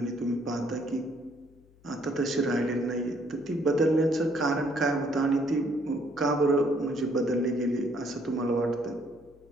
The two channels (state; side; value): noise; left; hum, 28 dB below the sound